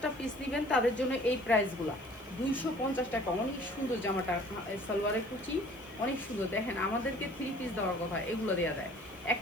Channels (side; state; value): left; noise; hiss, 27 dB below the sound